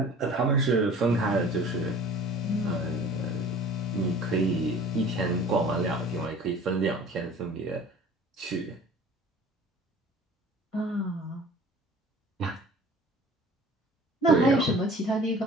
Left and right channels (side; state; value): both; normal; correlation 0.46